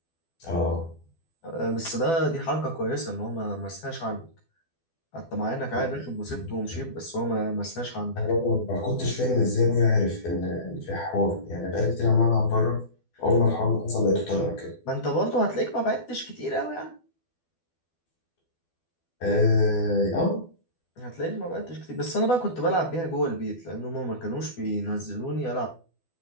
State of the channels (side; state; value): right; late; 12 ms